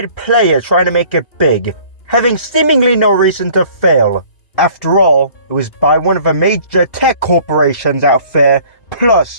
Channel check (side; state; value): right; late; 2.6 ms